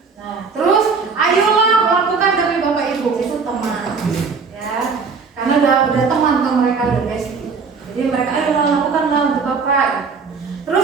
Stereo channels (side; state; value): left; quieter; 5.0 dB